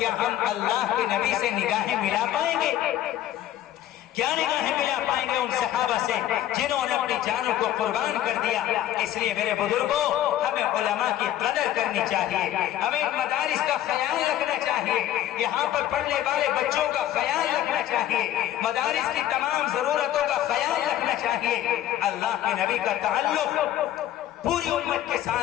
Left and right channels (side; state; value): right; quieter; 12.7 dB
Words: ہم اللہ کے نبی سے نگاہیں ملا پائیں گے؟ کیا نگاہیں ملا پائیں گے ان صحابہ سے جنہوں نے اپنی جانوں کو قربان کر دیا؟ اس لیے میرے بزرگوں، ہمیں علماء کی قدر کرنی چاہیے، ہمیں مدارس کا خیال رکھنا چاہیے، یہاں پر پڑھنے والے بچوں کا خیال رکھنا چاہیے، مدارس کی تمام ضرورتوں کا خیال رکھنا چاہیے۔ اللہ کے نبی کا تعلق پوری امت کے